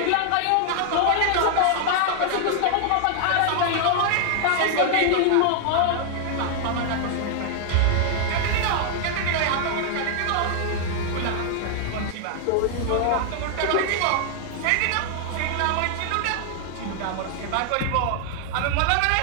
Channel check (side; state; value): both; different; correlation 0.00